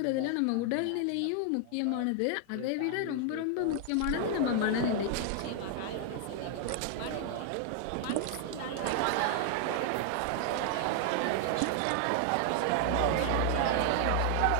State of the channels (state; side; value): different; both; correlation 0.00